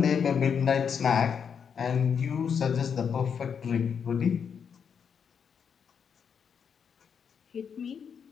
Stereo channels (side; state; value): right; quieter; 7.0 dB